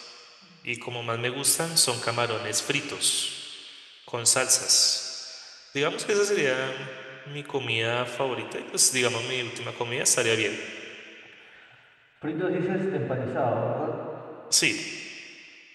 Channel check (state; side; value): identical; both; correlation 1.00